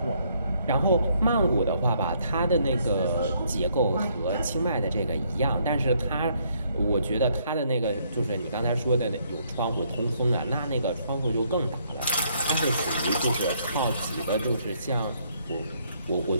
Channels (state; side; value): inverted; both; correlation -0.69